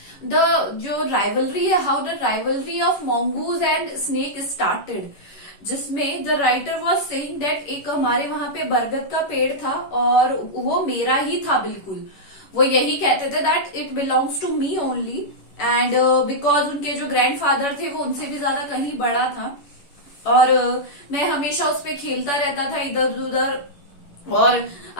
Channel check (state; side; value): late; right; 11 ms